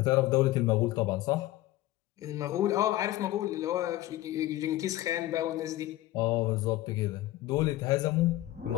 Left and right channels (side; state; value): right; quieter; 15.9 dB